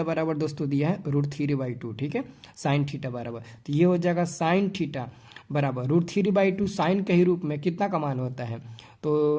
बराबर दोस्तों दिया है √3/2। ठीक है, साइन थीटा बराबर, तो ये हो जाएगा साइन थीटा बराबर √3/2 साइन के ही रूप में कितना का मान होता है,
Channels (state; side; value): identical; both; correlation 1.00